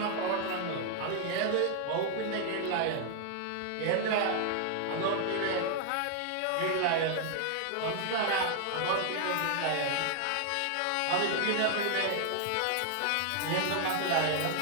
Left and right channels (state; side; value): different; both; correlation 0.00